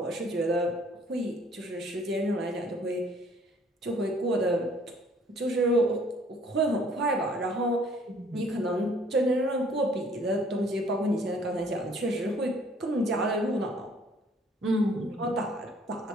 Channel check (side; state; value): both; normal; correlation 0.59